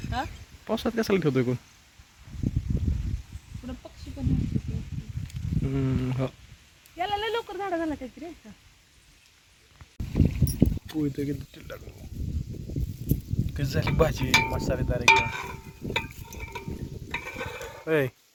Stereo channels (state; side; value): identical; both; correlation 1.00